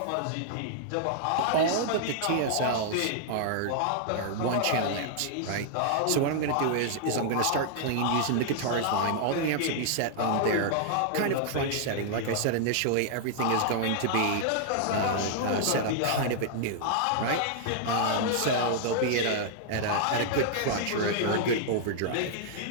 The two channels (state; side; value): different; both; correlation -0.01